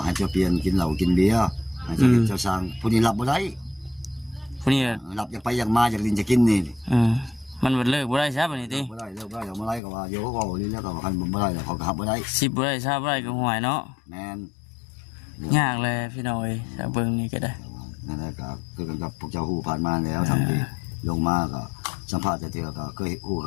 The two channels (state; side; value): drops out; right; at 9.8 s